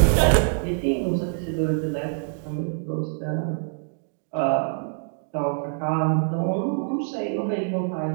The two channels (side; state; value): left; silent; 62 dB below the other